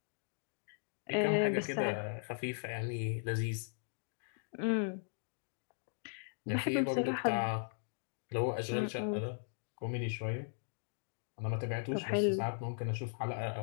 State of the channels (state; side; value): silent; right; digital silence